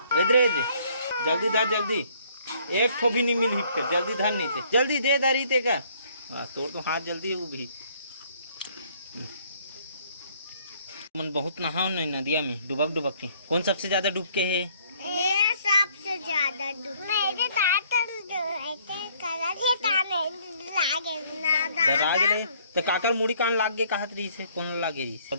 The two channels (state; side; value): inverted; both; correlation -0.62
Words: इधर जल्दी धा जल्दी एक ठो भी नहीं मिल फिर जल्दी धान नहीं थे जल्दी दे दारी ते का तोड़ तो हाथ जल्दी है वो भी मन बहुत नहाओ नहीं नदिया में डुबक के कौन सबसे ज्यादा डूब के है मैं सबसे ज्यादा डूब मेरे लागे तो काकर मुड़ी कान लाग गए कहत रही से कौन लागे रही